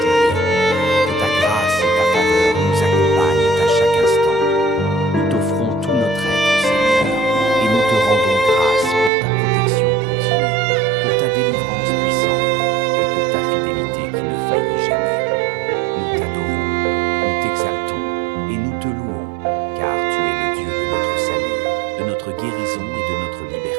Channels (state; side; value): drops out; left; at 9.1 s